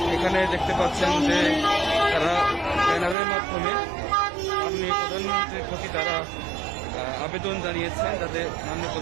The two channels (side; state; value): left; drops out; at 3.2 s